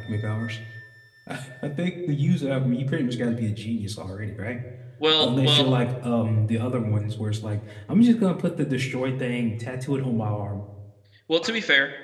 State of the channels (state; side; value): identical; both; correlation 1.00